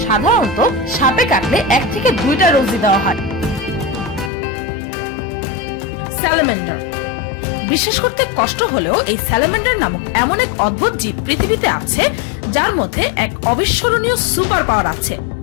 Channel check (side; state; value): right; drops out; at 4.3 s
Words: সাধারণত সাপে কাটলে 1 থেকে 2টা ডোজই দেওয়া হয়। স্যালামেন্ডার। বিশ্বাস করতে কষ্ট হলেও এই স্যালামেন্ডার নামক এমন এক অদ্ভুত জীব পৃথিবীতে আছে যার মধ্যে এক অবিস্মরণীয় সুপার পাওয়ার আছে।